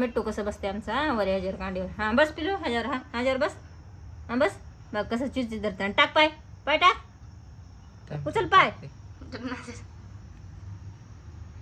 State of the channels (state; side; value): identical; both; correlation 1.00